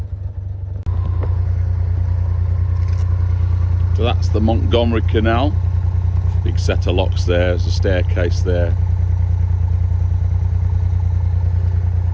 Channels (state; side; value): identical; both; correlation 1.00